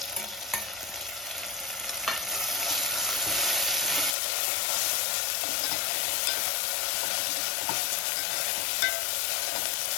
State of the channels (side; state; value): right; drops out; at 4.2 s